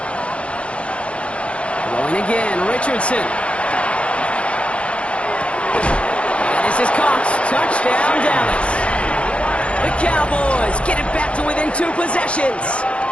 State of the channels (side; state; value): right; late; 0.060 ms